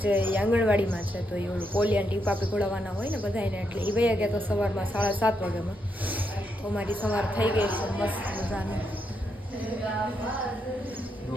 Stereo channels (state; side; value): normal; both; correlation 0.80